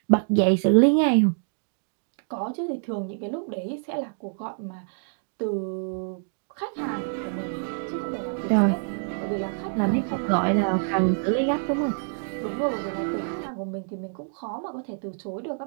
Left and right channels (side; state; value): left; silent; digital silence